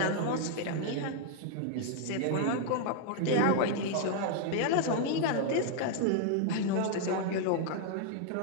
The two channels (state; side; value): different; both; correlation 0.00